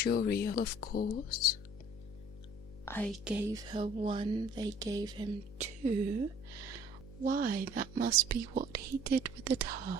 of course. I gave her 1, they gave him 2. Why, that must be what he did with the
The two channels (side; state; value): left; noise; hum, 16 dB below the sound